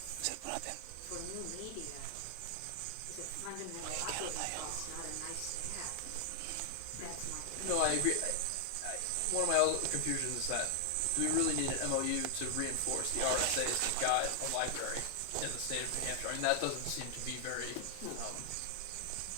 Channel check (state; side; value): different; both; correlation 0.00